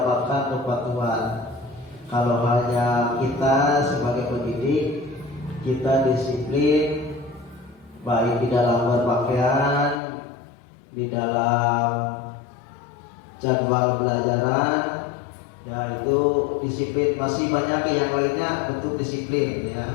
kepatuhan. Kalau hanya kita sebagai pendidik, kita disiplin baik di dalam berpakaian, di dalam jadwal pelajaran, ya itu disiplin. Masih banyak yang lainnya bentuk disiplin,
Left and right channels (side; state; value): right; drops out; at 10.0 s